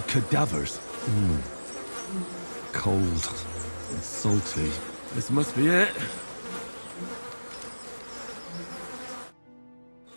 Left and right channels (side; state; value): both; inverted; correlation -1.00